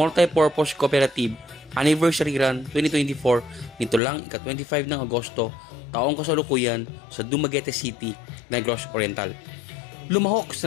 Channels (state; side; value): drops out; right; at 4.0 s